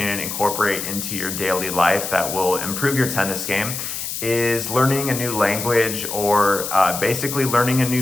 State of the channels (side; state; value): left; noise; hiss, 5 dB below the sound